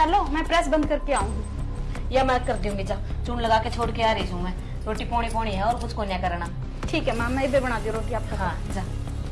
मैं प्रेस बंद करके आऊंगी। या मैं कर दूंगी, जा चून लगा के छोड़ के आ रही हूँ मैं। रोटी पौनी है और कुछ को नहीं करना। ठीक है माँ, मैं इधर बना दी रोटी आपका। हाँ जा।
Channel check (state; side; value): identical; both; correlation 1.00